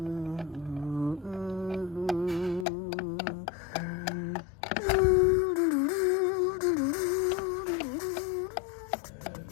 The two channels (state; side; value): drops out; right; at 2.7 s